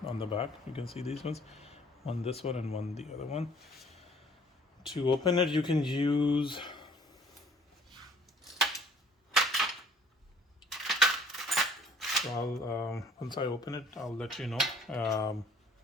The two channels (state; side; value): normal; both; correlation 0.55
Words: on the back. You can see these ones, one this one and one the other one. To open it, you can use so I'll once I open it, I'll let you know